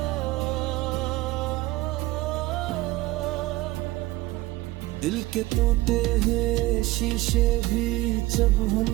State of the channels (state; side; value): quieter; left; 19.1 dB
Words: दिल के टूटे हैं शीशे भी जब हम